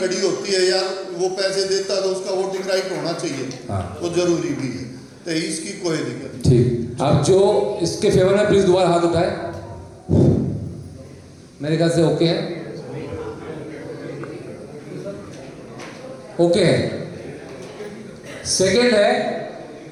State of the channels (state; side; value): identical; both; correlation 1.00